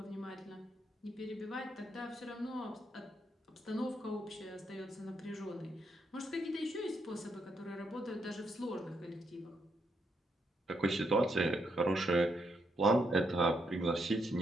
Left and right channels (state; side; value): normal; both; correlation 0.78